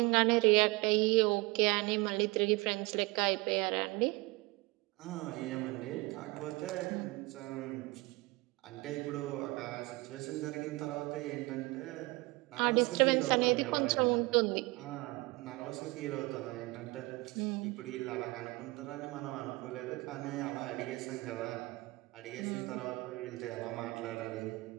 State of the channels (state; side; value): quieter; left; 23.9 dB